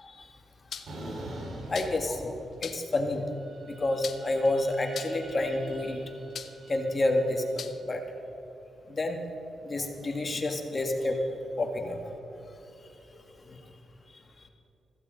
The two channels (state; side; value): normal; both; correlation 0.90